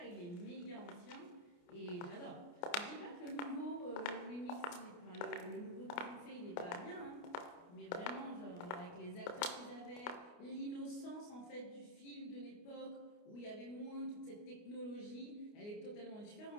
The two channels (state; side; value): late; right; 29 ms